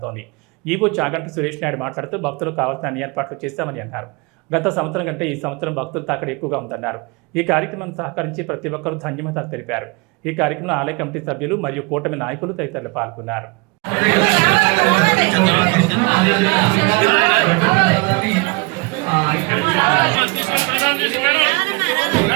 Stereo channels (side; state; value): left; quieter; 28.3 dB